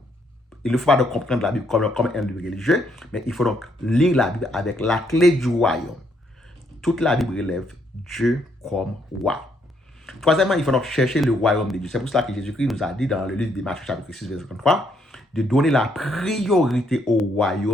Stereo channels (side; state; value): both; normal; correlation 0.72